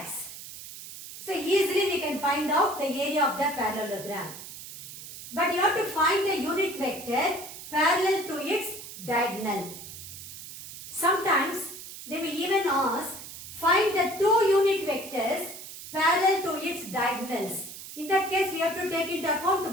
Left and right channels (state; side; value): noise; right; hiss, 13 dB below the sound